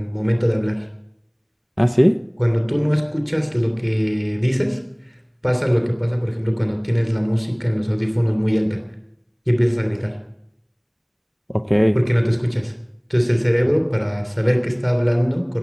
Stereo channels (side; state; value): both; identical; correlation 1.00